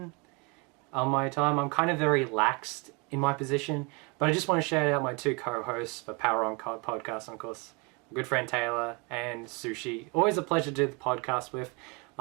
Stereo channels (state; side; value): quieter; left; 30.4 dB